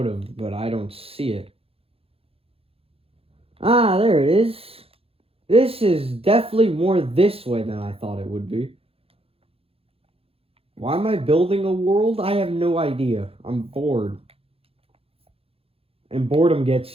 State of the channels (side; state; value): left; late; 0.28 ms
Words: have, but I don't see it. Ah, there it is. This is definitely more this way than I thought it would be. Why am I building a world? I have no idea. I'm bored. And boredom gets